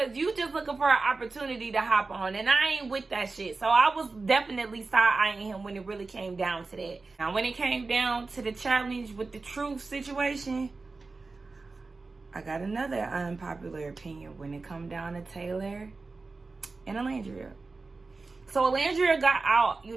you just looking for an opportunity to hop on, and I ain't with that shit. So I was definitely side-eyeing him when it really came down to that. Now, when it came down to the challenge with the truth situation, I got another unpopular opinion when it come down to Taylor and Alandria. So Alandria got out,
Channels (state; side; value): quieter; left; 3.8 dB